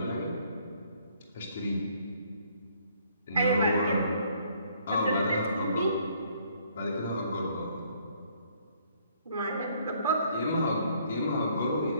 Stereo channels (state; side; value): inverted; both; correlation -0.64